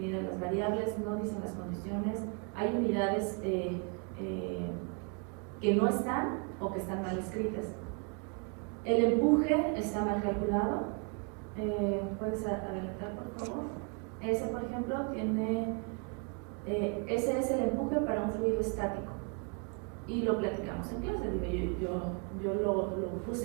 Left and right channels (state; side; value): quieter; left; 36.3 dB